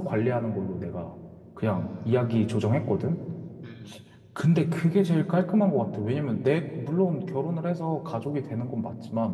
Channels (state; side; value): identical; both; correlation 1.00